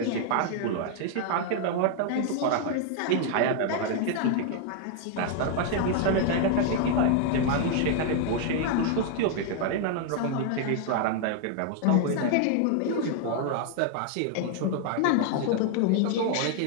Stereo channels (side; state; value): both; different; correlation 0.00